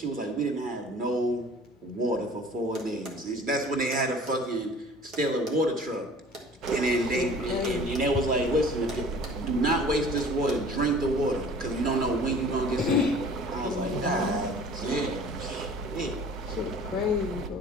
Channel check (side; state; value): both; normal; correlation 0.47